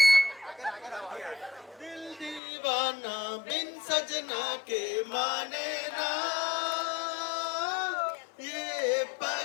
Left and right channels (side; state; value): right; drops out; at 2.4 s